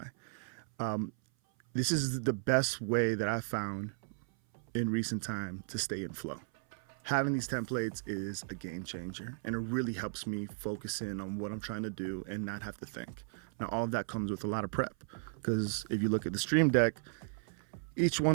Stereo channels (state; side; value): silent; left; 54 dB below the other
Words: This is the best way that I found in recent time to stay in flow. Having these templates is a game changer, and it really helps me focus in on what I'm trying to do and not have to think. Now, all of that comes with a lot of prep, because if you look at the Stream Deck, each